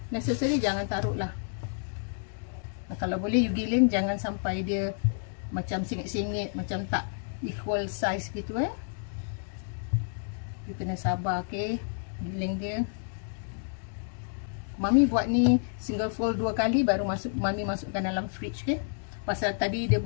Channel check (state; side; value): silent; right; 58 dB below the other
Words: necessary jangan taruh lah. Kalau boleh you giling jangan sampai dia macam singit-singit, macam tak equal size gitu You kena sabar giling dia. Mami buat ni single fold 2 kali baru Mami masukkan dalam fridge Pasal tadi dia